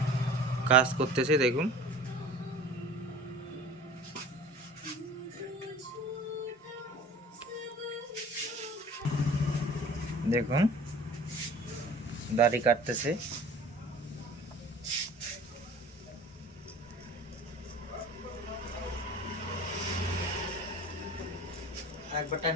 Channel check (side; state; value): both; normal; correlation 0.44